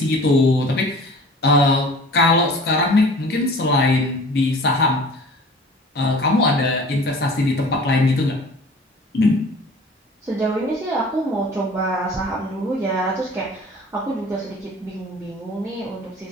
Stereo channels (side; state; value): both; normal; correlation 0.45